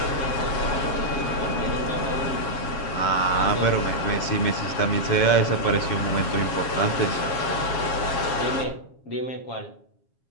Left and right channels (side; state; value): right; late; 7.3 ms